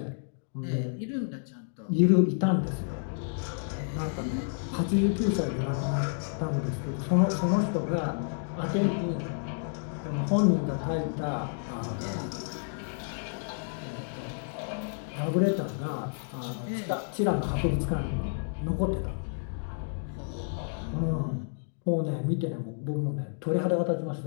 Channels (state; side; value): silent; right; digital silence